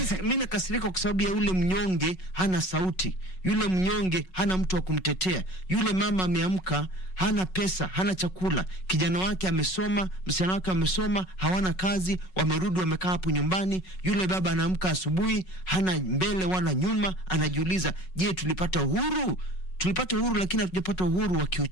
Mimi nakasirika kwa sababu ya yule mnyonge hana sauti. Yule mnyonge hana mtu wa kumtetea. Yule mama ameamka, hana pesa, hana chakula. Kijana wake amesoma, msichana wake amesoma, hawana kazi, wamerudi wamekaa hapo nyumbani. Yule baba anaamka asubuhi, hana mbele wala nyuma, anajiuliza, je, tulipata uhuru? Tulipata uhuru lakini hatujapata uhuru wa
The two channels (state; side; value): late; right; 5.4 ms